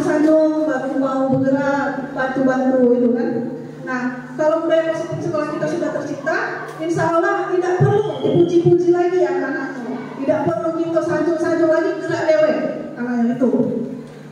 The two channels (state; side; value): identical; both; correlation 1.00